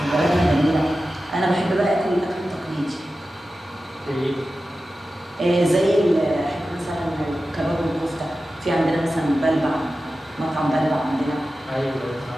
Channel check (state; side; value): normal; both; correlation 0.94